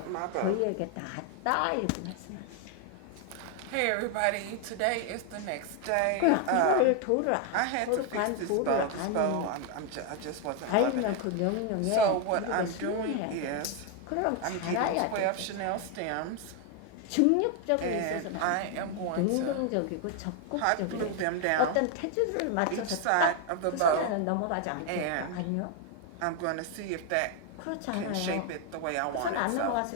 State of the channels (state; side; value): different; both; correlation 0.01